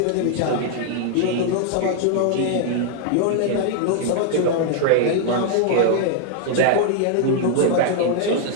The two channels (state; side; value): different; both; correlation -0.01